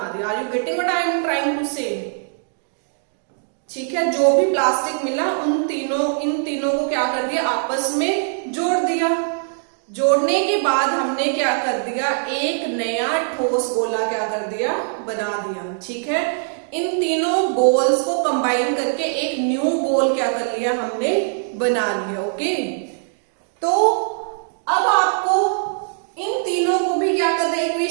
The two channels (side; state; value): left; silent; digital silence